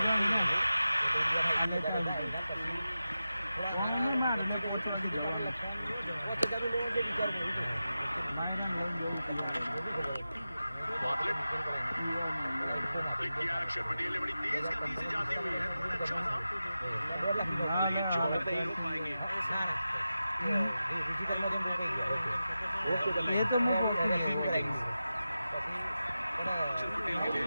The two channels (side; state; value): both; inverted; correlation -0.92